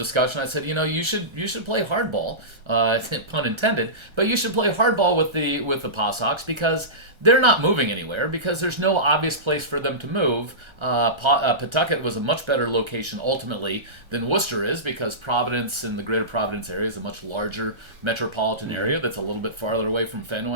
I said, you should play hardball, pun intended, but you should play hardball with the Pawsox because they're not moving anywhere because there's no obvious place for them to move. Pawtucket was a much better location ultimately than Worcester is because Providence and the greater Providence area is a much larger metropolitan area that's a little bit farther away from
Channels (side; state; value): left; late; 1.3 ms